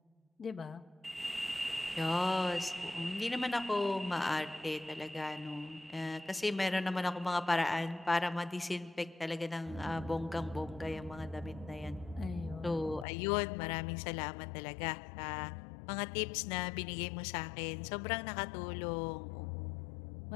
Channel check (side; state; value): right; drops out; at 13.1 s